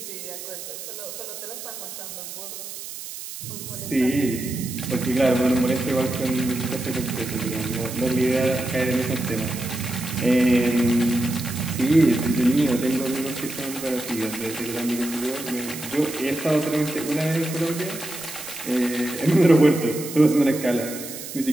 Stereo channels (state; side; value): noise; right; hiss, 10 dB below the sound